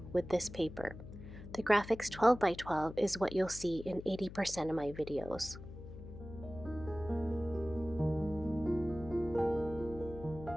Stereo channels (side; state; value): left; noise; hum, 13 dB below the sound